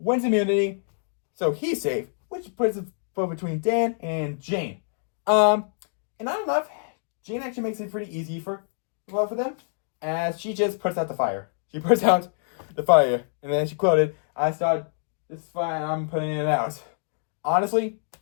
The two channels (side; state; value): right; silent; digital silence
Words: immunity, so he's safe, which puts it between Dan and Jane. And I don't know if Jane actually makes it pretty easy for them, as she just puts out the fire. She puts out the fire, and then she quoted, "I start this fire, I'm putting it out." Honestly,